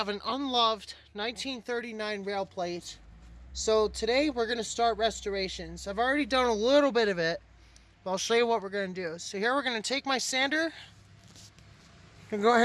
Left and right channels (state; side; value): identical; both; correlation 1.00